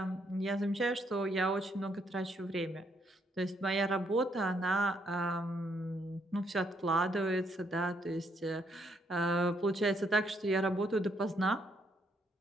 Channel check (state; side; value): normal; both; correlation 0.72